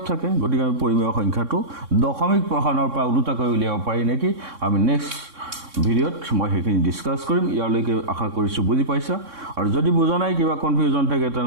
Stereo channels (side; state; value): left; late; 3.6 ms